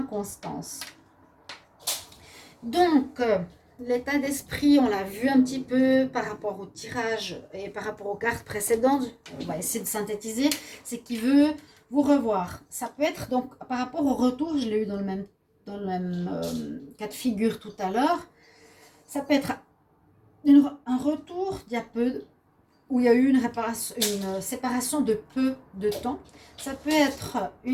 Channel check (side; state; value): both; identical; correlation 1.00